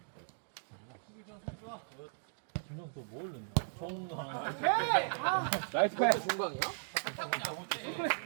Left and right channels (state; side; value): silent; left; digital silence